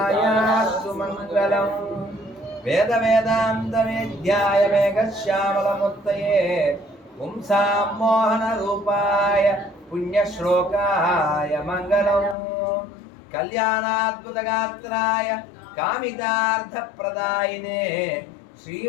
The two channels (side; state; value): right; drops out; at 12.4 s